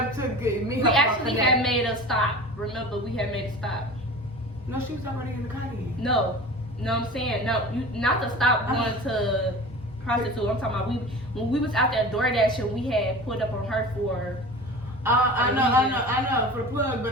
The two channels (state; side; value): normal; both; correlation 0.36